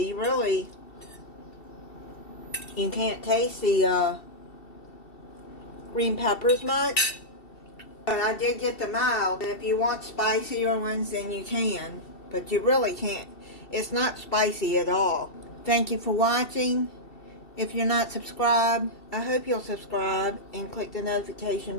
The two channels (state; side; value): late; right; 2.7 ms